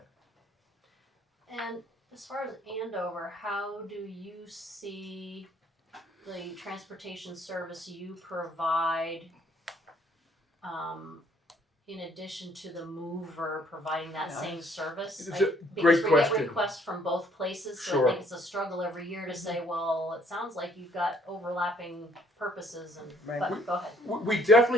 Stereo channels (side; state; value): both; normal; correlation 0.62